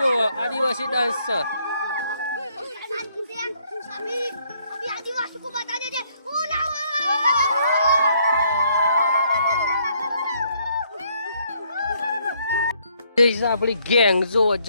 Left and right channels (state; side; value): inverted; both; correlation -0.69